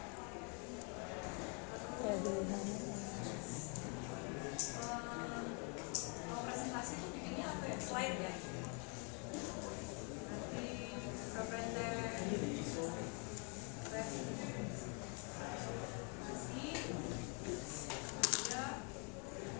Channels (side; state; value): right; quieter; 36.6 dB